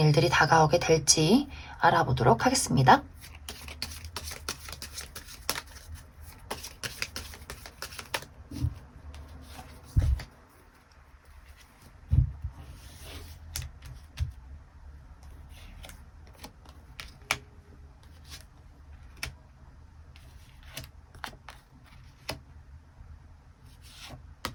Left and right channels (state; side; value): identical; both; correlation 1.00